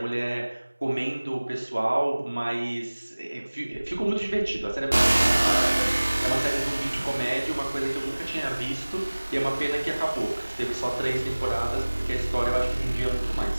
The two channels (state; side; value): inverted; both; correlation -1.00